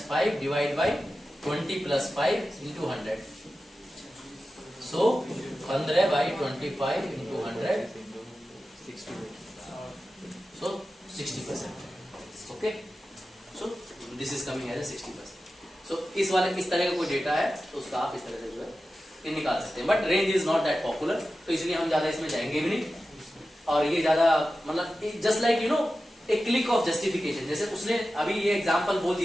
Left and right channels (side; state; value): both; normal; correlation 0.93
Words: 5 divide by 20 plus 5 into 100। So 15 by 25 into 100, so 60%. Okay, so this is coming as a 60%. So इस तरह का कोई डेटा है तो उसका आप इस तरह से जो है ये निकाल सकते हैं। But range is not that popular, तो इसलिए हम ज्यादा इसमें जाएंगे भी नहीं। और ये ज्यादा मतलब just like you know A click of justification. जैसे उसने अभी ये एग्जाम्पल बोल